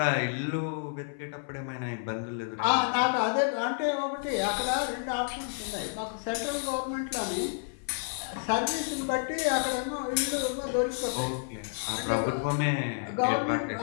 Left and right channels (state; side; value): silent; right; 56 dB below the other